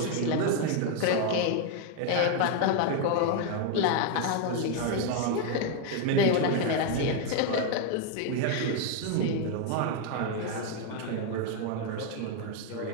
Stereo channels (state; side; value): different; both; correlation 0.01